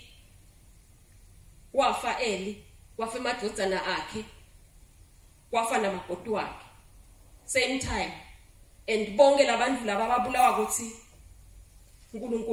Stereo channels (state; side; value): identical; both; correlation 1.00